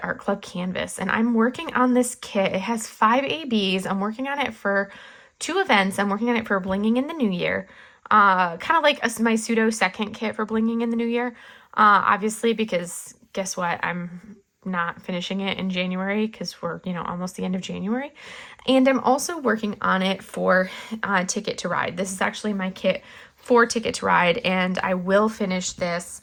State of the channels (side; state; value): both; identical; correlation 1.00